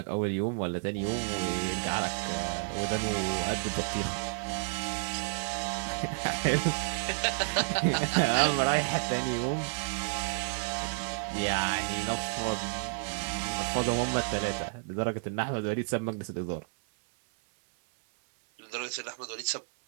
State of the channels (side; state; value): left; silent; 57 dB below the other